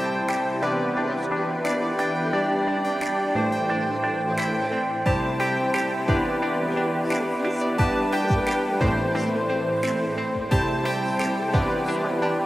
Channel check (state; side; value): normal; both; correlation 0.95